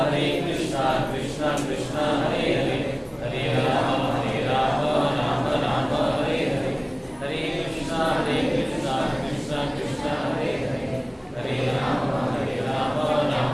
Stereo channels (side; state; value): both; identical; correlation 1.00